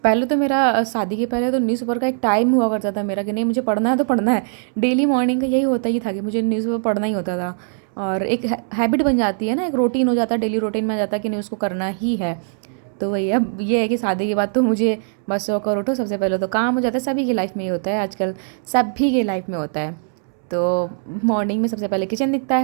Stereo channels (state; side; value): silent; left; 65 dB below the other